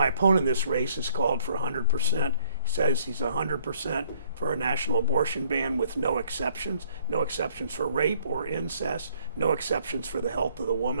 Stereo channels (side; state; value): both; inverted; correlation -0.63